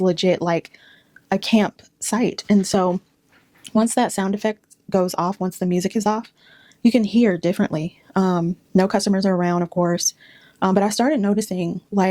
like a campsite. And so once that sound effect goes off, once the music is off, you can hear differently. No customers are around, of course. But I started noticing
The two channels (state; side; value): identical; both; correlation 1.00